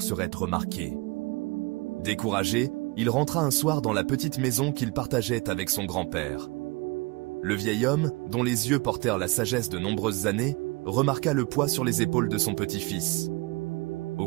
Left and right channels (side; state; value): left; quieter; 25.3 dB